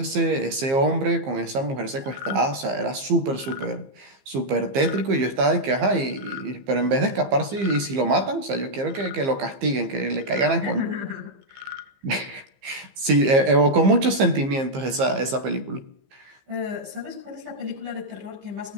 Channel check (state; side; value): late; left; 15 ms